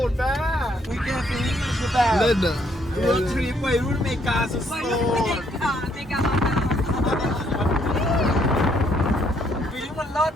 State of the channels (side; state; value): both; normal; correlation 0.70